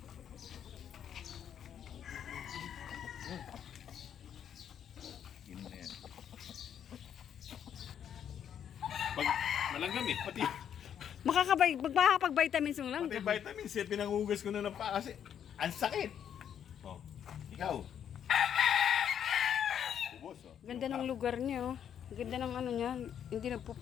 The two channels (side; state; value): right; quieter; 9.0 dB